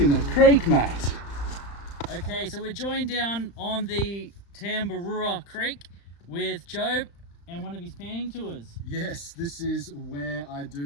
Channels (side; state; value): right; late; 35 ms